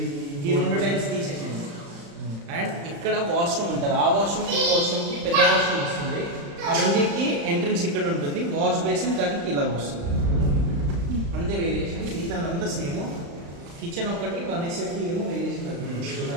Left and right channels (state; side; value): late; left; 35 ms